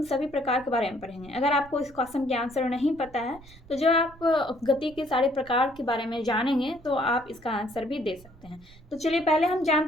सभी प्रकार के बारे में पढ़ेंगे। अगर आपको इस क्वेश्चन के आंसर नहीं पता है, तो जब आप गति के सारे प्रकार के बारे में जानेंगे तो आप इसका आंसर भी दे सकते हैं। तो चलिए पहले हम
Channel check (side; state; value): right; noise; rumble, 22 dB below the sound